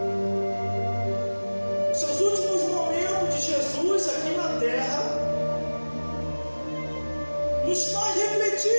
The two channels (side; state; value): both; inverted; correlation -1.00